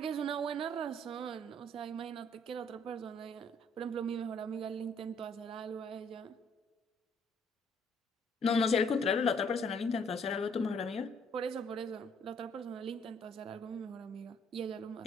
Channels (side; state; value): both; normal; correlation 0.64